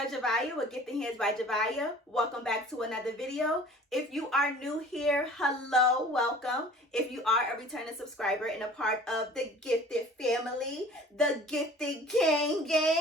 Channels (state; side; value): normal; both; correlation 0.47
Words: Javiah with Gifted Hands by Javiah. Welcome back to another video. If you are new here, hello, welcome. If you are a returning subscriber and a part of the Gifted family, the Gifted gang,